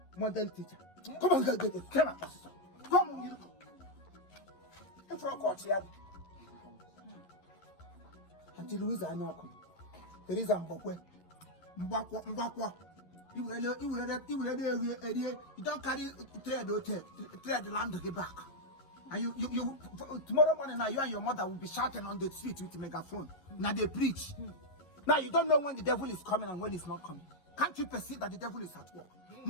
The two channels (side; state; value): right; late; 11 ms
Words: Model teacher. Come on, get it. Come on. Come on, you. If you're caught here. Until Louise I know. There is a Mbakwa. You don't carry trade the land to get back. And you tomorrow morning now you and your mother will be shouting on the street with a megaphone. Now they preach. Now you don't know when the devil is coming and when he's not coming. Can't you perceive that the devil is at work?